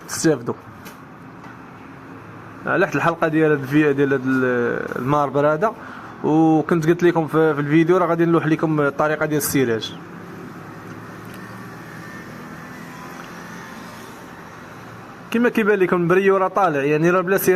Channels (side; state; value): both; identical; correlation 1.00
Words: تستافدوا على حد الحلقه ديال هذا الماربر هذا. وكنت قلت لكم في الفيديو راه غادي نلوح لكم الطريقه ديال السراج. كما كيبان لكم البريو راه طالع، يعني راه بلا